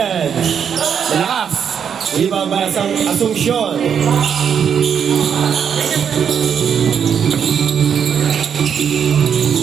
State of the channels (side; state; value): left; quieter; 7.7 dB